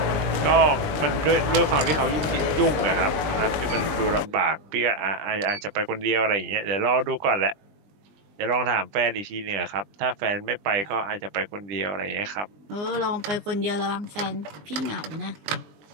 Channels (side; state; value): left; late; 20 ms